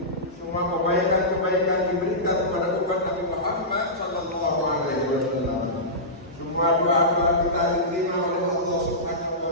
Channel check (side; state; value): both; normal; correlation -0.17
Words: semua kebaikan-kebaikan diberikan kepada umat Nabi Muhammad sallallahu alaihi wasallam. Semua doa-doa kita diterima oleh Allah Subhanahu